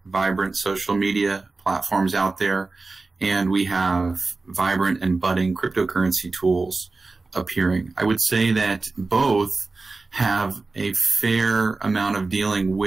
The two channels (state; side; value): quieter; left; 3.6 dB